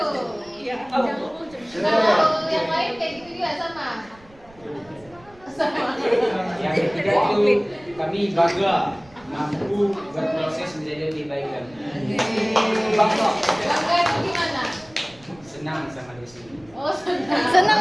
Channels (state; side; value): noise; right; rumble, 26 dB below the sound